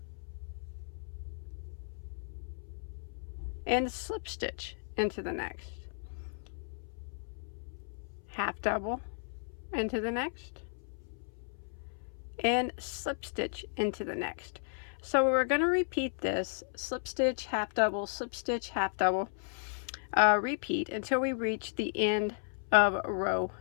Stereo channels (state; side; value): silent; right; 55 dB below the other